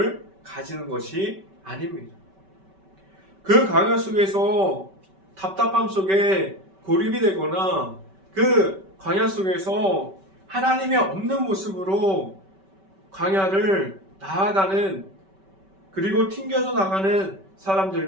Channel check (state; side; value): late; left; 5.2 ms